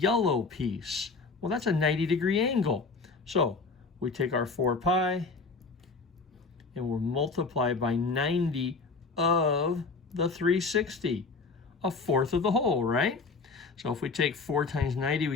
piece. Well, that's a 90-degree angle. So we take our 4 pi, and we'll multiply by 90 of the 360, a fourth of the whole, right? So if we take 4 times 90,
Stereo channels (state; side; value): quieter; right; 4.2 dB